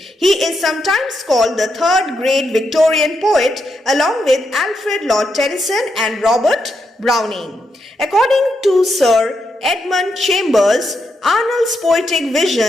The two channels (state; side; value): normal; both; correlation 0.82